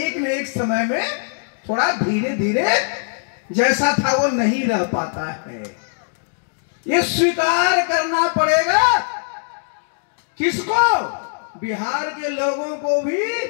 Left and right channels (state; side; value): silent; right; 65 dB below the other